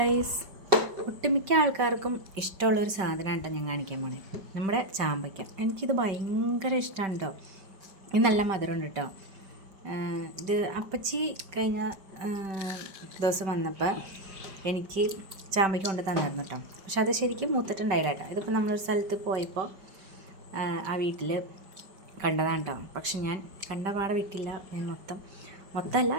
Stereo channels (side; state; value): left; late; 5.2 ms